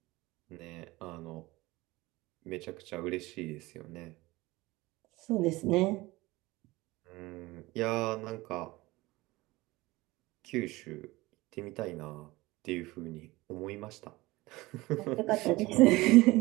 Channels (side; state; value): left; quieter; 20.5 dB